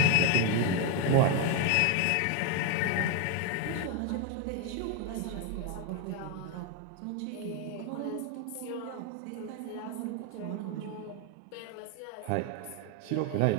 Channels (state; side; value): different; both; correlation 0.01